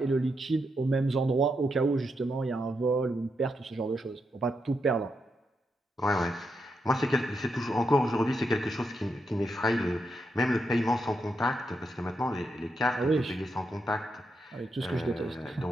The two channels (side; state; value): both; normal; correlation 0.83